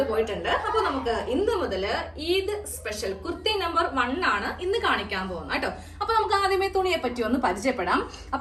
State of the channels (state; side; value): identical; both; correlation 1.00